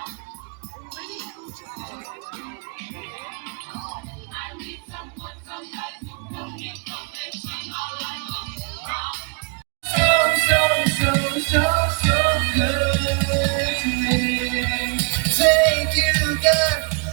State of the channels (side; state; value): left; quieter; 36.6 dB